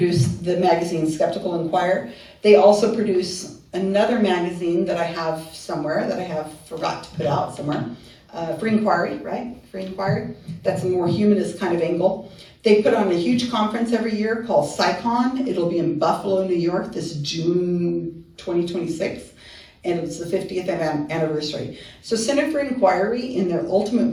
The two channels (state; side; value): identical; both; correlation 1.00